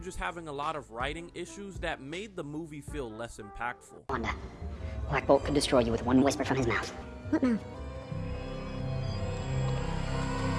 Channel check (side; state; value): both; identical; correlation 1.00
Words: having a lot of writing issues that made the movie feel less impactful. Wanda, Black Bolt could destroy you with one whisper from his mouth. What mouth?